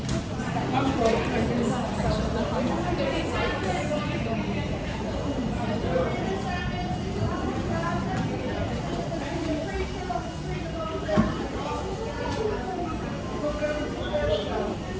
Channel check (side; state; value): both; identical; correlation 1.00